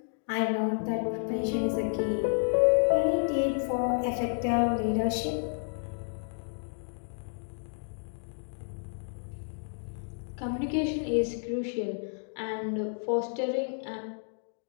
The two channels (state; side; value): silent; right; 57 dB below the other